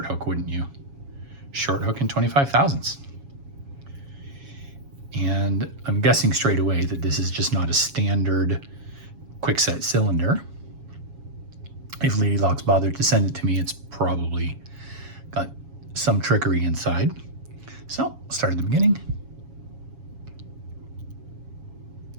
hook, wouldn't you? Short hook in 25 thousandths. And I'm guessing straight away that this is just not a standard Kwikset cylinder. If Lady Locks bothered to send it to me, it's probably got some trickery inside. So, start at the beginning.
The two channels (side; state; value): left; late; 7.2 ms